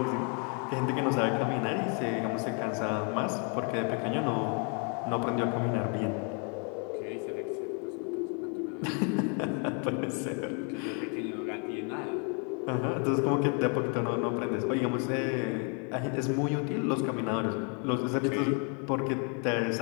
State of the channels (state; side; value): quieter; right; 38.2 dB